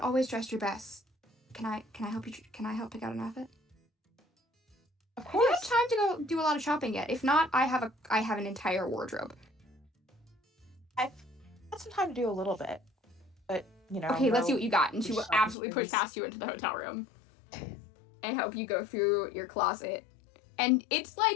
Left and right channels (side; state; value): right; drops out; at 15.6 s